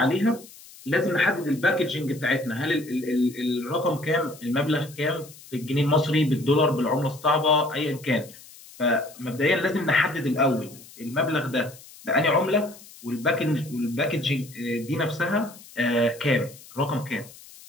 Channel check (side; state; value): left; noise; hiss, 20 dB below the sound